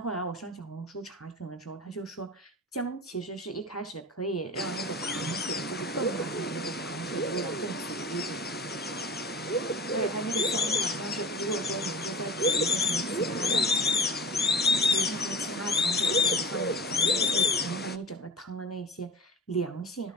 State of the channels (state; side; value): normal; both; correlation 0.33